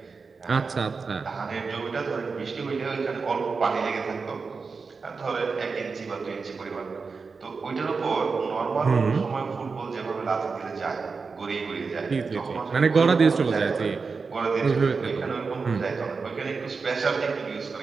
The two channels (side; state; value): left; quieter; 4.7 dB